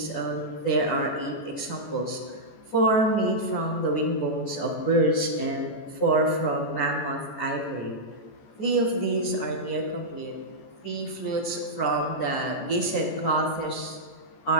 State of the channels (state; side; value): late; right; 14 ms